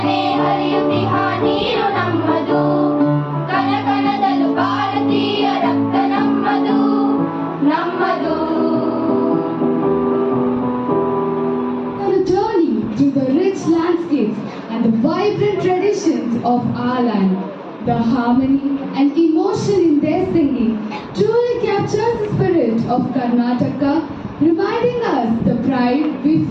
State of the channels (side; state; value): both; identical; correlation 1.00